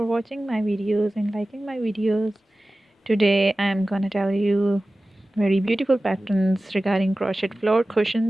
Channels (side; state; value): both; normal; correlation 0.96